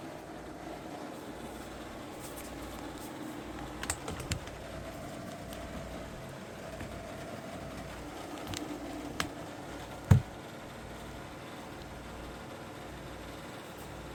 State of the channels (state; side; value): identical; both; correlation 1.00